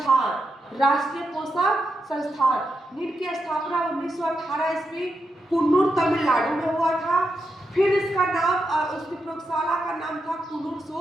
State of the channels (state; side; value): normal; both; correlation 0.85